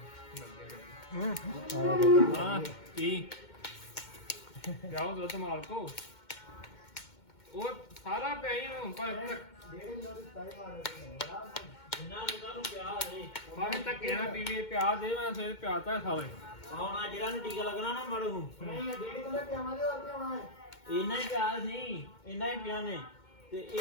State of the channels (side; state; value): right; late; 2.2 ms